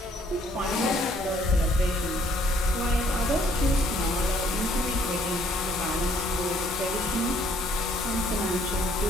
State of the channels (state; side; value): normal; both; correlation 0.63